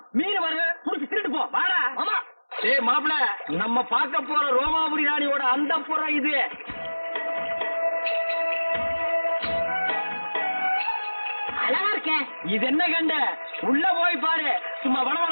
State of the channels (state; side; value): inverted; both; correlation -1.00